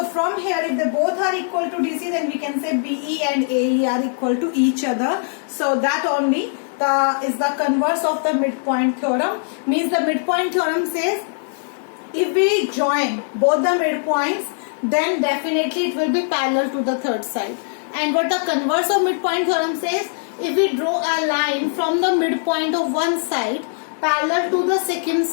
from here if they both are equal to DC, then we can say BE and AE are equal to each other. So that only is the converse of the midpoint theorem. Means the midpoint theorem says if we join both the midpoints, then definitely it will be parallel to the third side. And what the converse of midpoint theorem says, if we draw a line from the midpoint of one side parallel to the second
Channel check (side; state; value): right; silent; digital silence